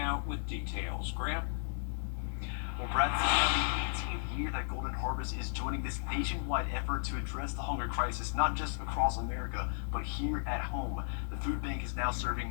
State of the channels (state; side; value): silent; right; 55 dB below the other